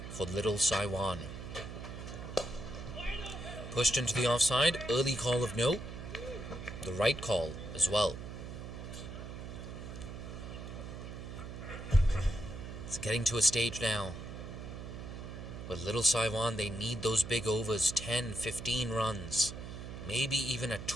for Little Saiwan. Pushed into the offside, early call of no. The right call as well. It's getting to a stage now. But Little Saiwan, they need those big overs, 10, 15 runs. Maybe even a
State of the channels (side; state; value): right; noise; hum, 9 dB below the sound